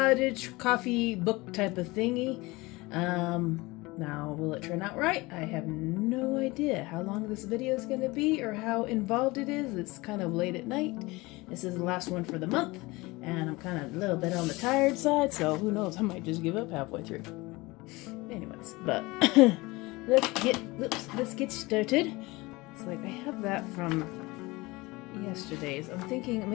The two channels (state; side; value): quieter; right; 22.4 dB